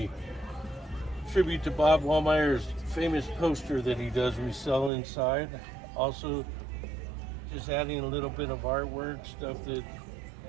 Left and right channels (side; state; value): left; drops out; at 4.9 s